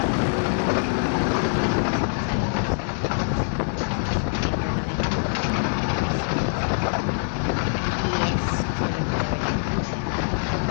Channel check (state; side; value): silent; right; digital silence